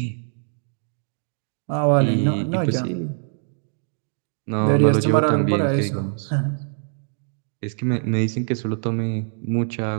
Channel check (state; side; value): silent; left; digital silence